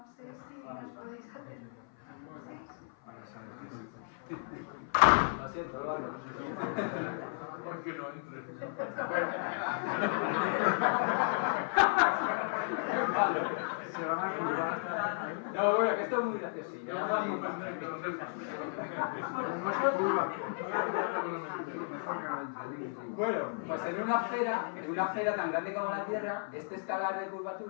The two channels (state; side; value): silent; right; 55 dB below the other